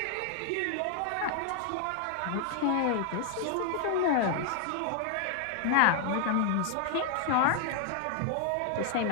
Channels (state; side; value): different; both; correlation 0.00